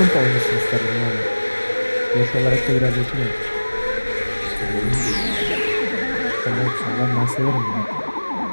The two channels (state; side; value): inverted; both; correlation -1.00